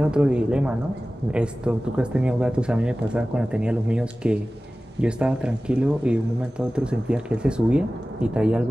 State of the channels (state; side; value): normal; both; correlation 0.96